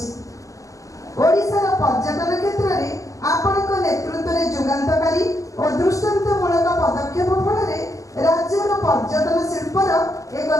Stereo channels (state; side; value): late; right; 0.16 ms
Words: ଓଡ଼ିଶାର ପର୍ଯ୍ୟଟନ କ୍ଷେତ୍ରରେ ଆପଣଙ୍କ ନେତୃତ୍ୱରେ ଯୁଗାନ୍ତକାରୀ ଓ ଦୃଷ୍ଟାନ୍ତମୂଳକ ପଦକ୍ଷେପ ଫଳରେ ରାଜ୍ୟର ପର୍ଯ୍ୟଟନ ଶିଳ୍ପର ଏକ